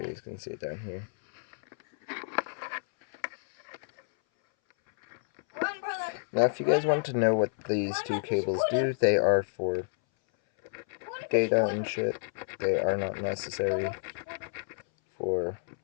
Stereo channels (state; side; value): silent; right; 58 dB below the other